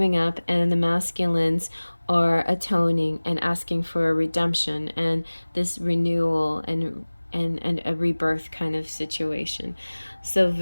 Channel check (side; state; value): both; inverted; correlation -1.00